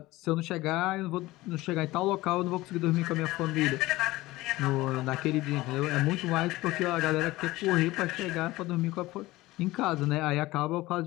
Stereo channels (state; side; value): quieter; right; 18.7 dB